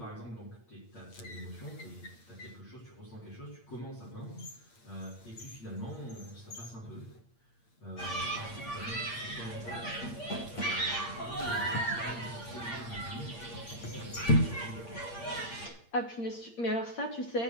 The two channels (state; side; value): late; right; 8.6 ms